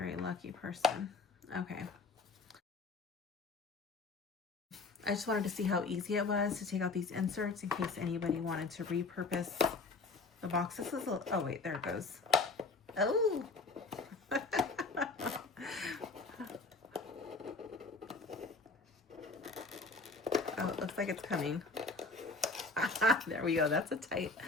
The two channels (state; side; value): quieter; right; 3.7 dB